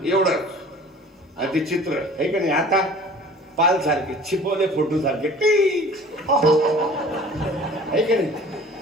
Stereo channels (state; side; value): normal; both; correlation 0.46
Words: एवढंच आणि ते चित्र आहे का नाही आता पाल सारखे छिपवले फोटो सारखे आहे का नाही